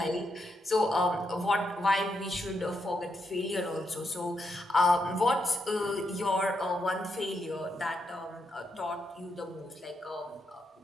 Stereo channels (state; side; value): normal; both; correlation 0.81